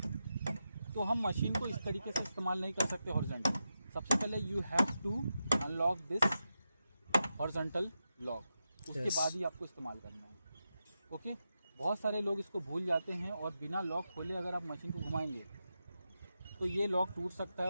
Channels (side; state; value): both; inverted; correlation -0.89